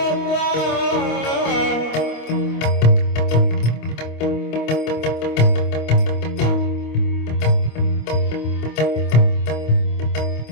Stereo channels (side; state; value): right; late; 25 ms